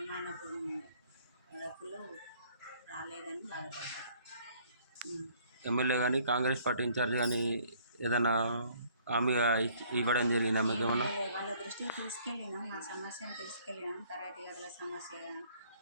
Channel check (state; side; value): inverted; both; correlation -0.60